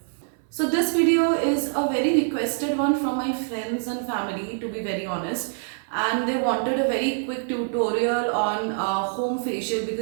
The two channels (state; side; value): silent; left; 62 dB below the other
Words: So this video is a very requested one from my friends and family, to be very honest, and they wanted a very quick tutorial on home facial